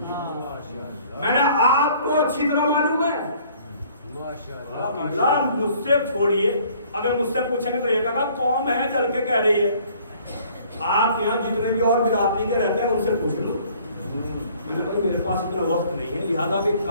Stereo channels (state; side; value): inverted; both; correlation -0.56